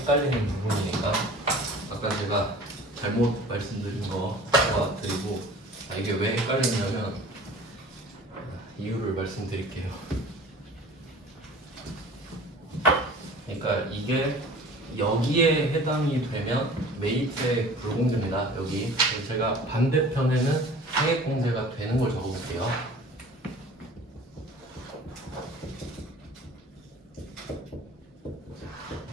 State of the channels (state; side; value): normal; both; correlation 0.44